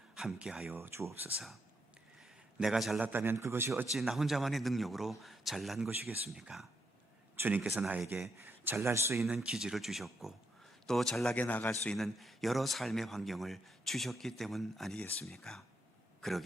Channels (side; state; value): both; normal; correlation 0.79